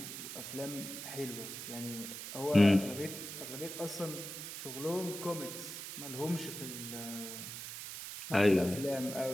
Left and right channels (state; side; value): noise; right; hiss, 8 dB below the sound